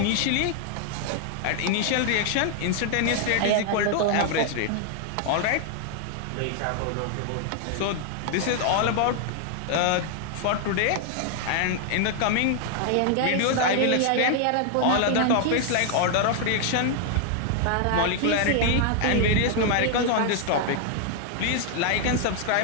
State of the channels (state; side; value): different; both; correlation 0.00